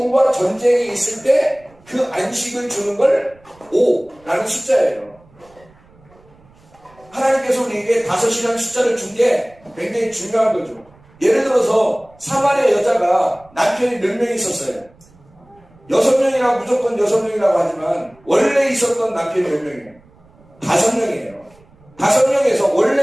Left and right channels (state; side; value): noise; right; rumble, 29 dB below the sound